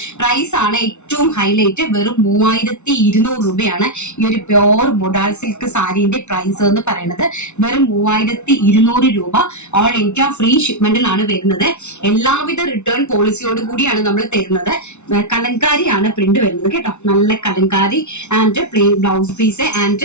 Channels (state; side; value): late; right; 0.82 ms